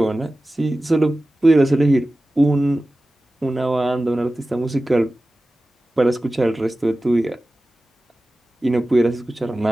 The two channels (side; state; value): both; normal; correlation 0.95